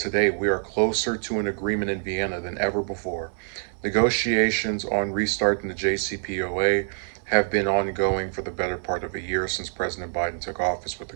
we are closer to an agreement in Vienna than ever before. Negotiations on restarting the JCPOA have been ongoing for the better part of a year since President Biden took office with the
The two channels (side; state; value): left; silent; 61 dB below the other